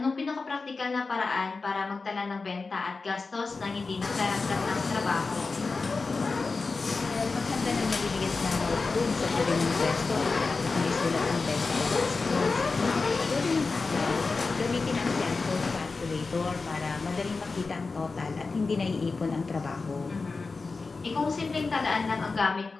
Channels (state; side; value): quieter; right; 4.1 dB